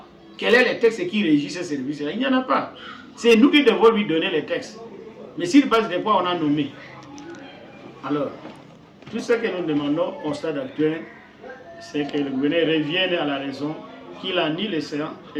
Quel est le texte qui régit ce service-là? Il n'y en a pas. C'est nous qui devons lui donner les textes. Mais sur base de quoi on a nommé? Alors, tout ce que nous demandons au stade actuel, c'est que le gouverneur revienne à la raison, qu'il annule les séances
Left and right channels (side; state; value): both; identical; correlation 1.00